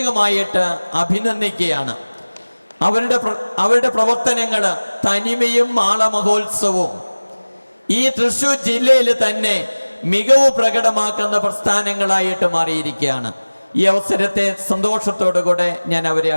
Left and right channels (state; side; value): inverted; both; correlation -1.00